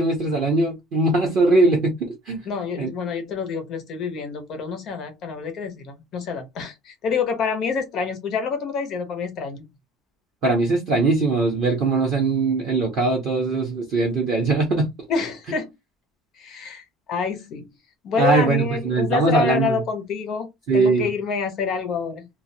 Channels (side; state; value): both; normal; correlation 0.47